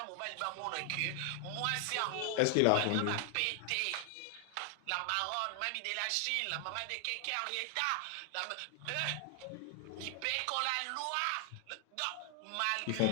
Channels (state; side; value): different; both; correlation 0.00